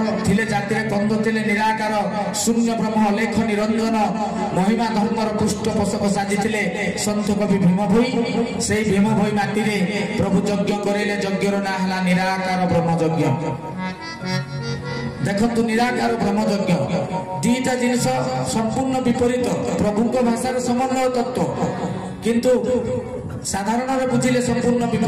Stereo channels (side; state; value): both; identical; correlation 1.00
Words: ଥିଲେ, ଜାତିରେ କନ୍ଧ ଥିଲେ, ନିରାକାର ଶୂନ୍ୟ ବ୍ରହ୍ମ ଅଲେଖ ନିରଞ୍ଜନ ମହିମା ଧର୍ମର ପୃଷ୍ଠପୋଷକ ସାଜିଥିଲେ ସନ୍ଥ କବି ଭୀମ ଭୋଇ। ସେଇ ଭୀମ ଭୋଇ ମାଟିରେ ପ୍ରଭୁ ଯଜ୍ଞ କରେଇଲେ। ଯଜ୍ଞର ନାଁ ହେଲା ନିରାକାର ବ୍ରହ୍ମ ଯଜ୍ଞ। ଦେଖନ୍ତୁ, ନିରାକାର ବ୍ରହ୍ମ ଯଜ୍ଞ ଦିଟା ଜିନିଷ ସମ୍ପୂର୍ଣ୍ଣ ବିପରୀତ। ପ୍ରଭୁଙ୍କ ଭାଷାର ସମନ୍ୱୟ ତତ୍ତ୍ୱ, କିନ୍ତୁ ସାଧାରଣରେ ବୁଝିଲେ ସମ୍ପୂର୍ଣ୍ଣ